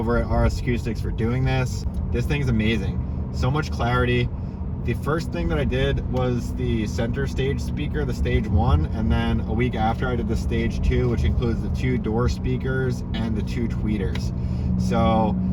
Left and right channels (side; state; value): both; identical; correlation 1.00